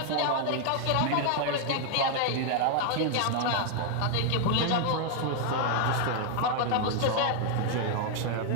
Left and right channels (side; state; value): both; different; correlation 0.00